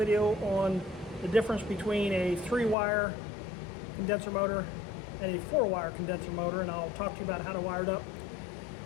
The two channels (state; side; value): drops out; right; at 2.8 s